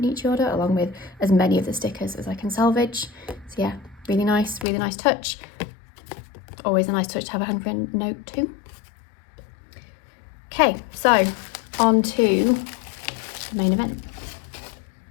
order, along with as many of the stickers as I can salvage. So yeah, really nice touch. Always a nice touch to have a handwritten note too. Okay, so on to the main event.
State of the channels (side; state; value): right; drops out; at 4.7 s